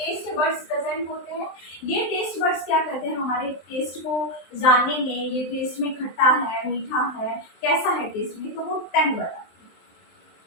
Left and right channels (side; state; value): right; late; 23 ms